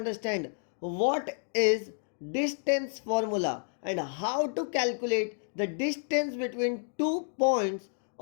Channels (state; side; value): silent; right; digital silence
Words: what is distance formula and how to calculate the distance between two points